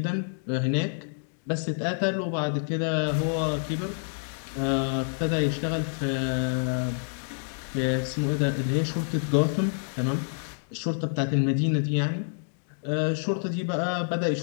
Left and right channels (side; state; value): right; silent; digital silence